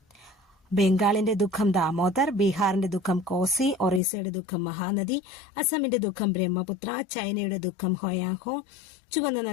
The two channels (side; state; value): right; drops out; at 4.0 s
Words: ബംഗാളിന്റെ ദുഃഖം ദാമോദർ, ബീഹാറിന്റെ ദുഃഖം കോസി, ഒറീസയുടെ ദുഃഖം മഹാനദി, അസമിന്റെ ദുഃഖം ബ്രഹ്മപുത്ര, ചൈനയുടെ ദുഃഖം ഹോയാഹോ, ചുവന്ന